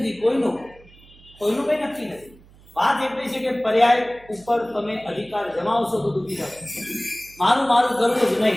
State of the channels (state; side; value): noise; right; hum, 25 dB below the sound